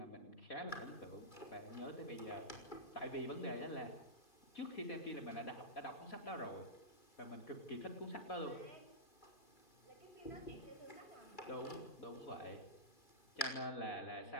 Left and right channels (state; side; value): late; right; 2.3 ms